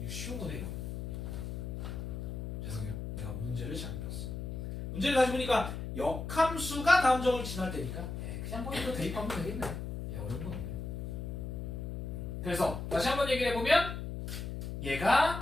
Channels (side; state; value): left; noise; hum, 6 dB below the sound